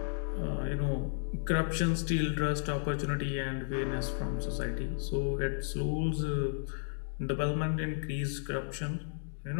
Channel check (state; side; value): silent; right; digital silence